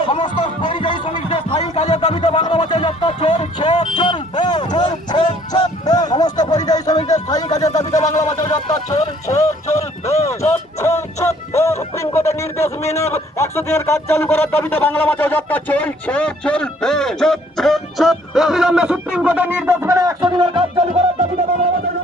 সমস্ত পরিযায়ী শ্রমিকদের স্থায়ী কাজের দাবিতে বাংলা ভাষায় যাত্রা চলছে সমস্ত পরিযায়ী শ্রমিকদের স্থায়ী কাজের দাবিতে বাংলা ভাষায় যাত্রা চলছে সুপ্রিম কোর্টের নির্দেশ মেনে 100 দিনের কাজ চালু করার দাবিতে বাংলা ভাষায় যাত্রা চলছে অবিলম্বে সুপ্রিম কোর্টের নির্দেশ মেনে 100 দিনের কাজ চালু করার দাবিতে বাংলা ভাষায়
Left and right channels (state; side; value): normal; both; correlation 0.60